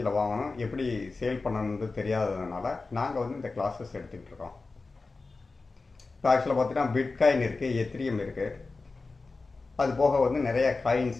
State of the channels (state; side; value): quieter; right; 3.8 dB